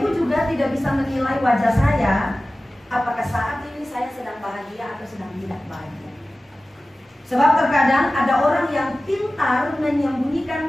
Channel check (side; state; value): both; normal; correlation 0.96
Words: juga tidak bisa menilai wajah saya apakah saat ini saya sedang bahagia atau sedang tidak bahagia. Sebab terkadang ada orang yang pintar